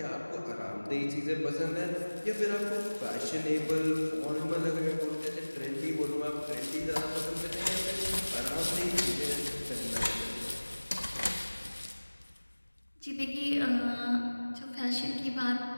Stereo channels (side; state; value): both; inverted; correlation -1.00